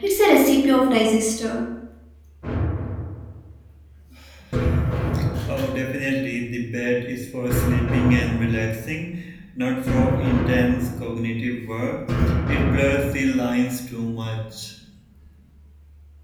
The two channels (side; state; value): both; identical; correlation 1.00